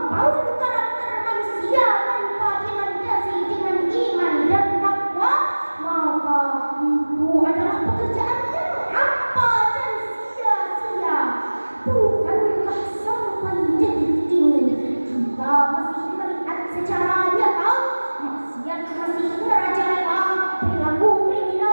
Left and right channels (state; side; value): inverted; both; correlation -1.00